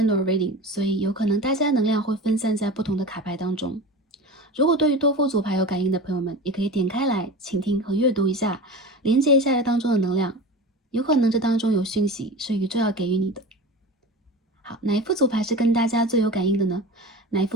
Reading， 所以有可能大家能量会分散在不同的卡牌当中。如果对于多副组牌有感应的朋友们，也可以点开来倾听和阅读一下，连接一下这当中的能量，有可能这当中有讯息是宇宙要给予你的。好，哪一副组牌是跟大家最有感应的呢？哪一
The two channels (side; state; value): both; normal; correlation 0.31